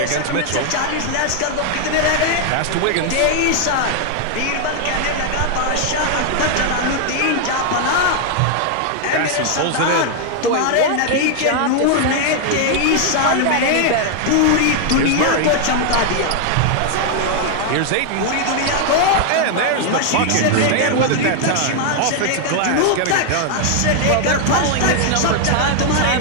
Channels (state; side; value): different; both; correlation 0.00